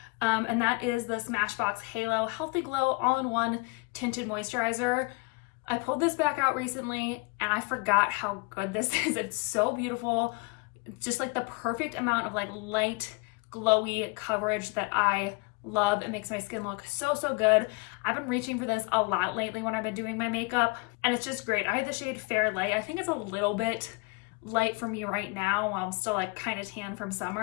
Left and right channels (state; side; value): quieter; right; 28.4 dB